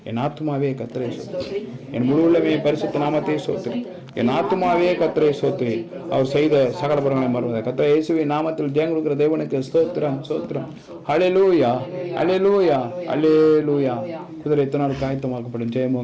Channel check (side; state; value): both; identical; correlation 1.00